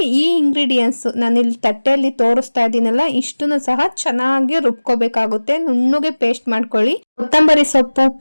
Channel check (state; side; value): inverted; both; correlation -1.00